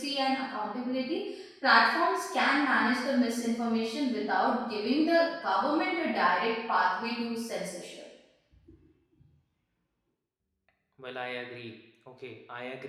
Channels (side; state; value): both; identical; correlation 1.00